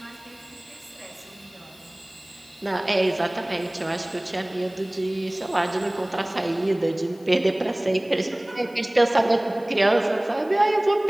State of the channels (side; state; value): left; noise; hiss, 27 dB below the sound